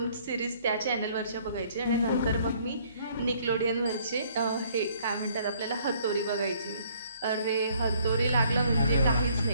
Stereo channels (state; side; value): inverted; both; correlation -0.62